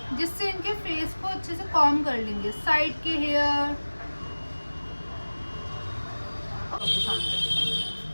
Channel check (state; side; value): inverted; both; correlation -1.00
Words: जिससे इनके फेस को अच्छे से कॉम कर लेंगे, साइड के हेयर।